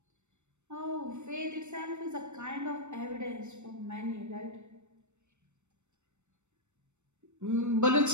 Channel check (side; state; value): left; late; 0.83 ms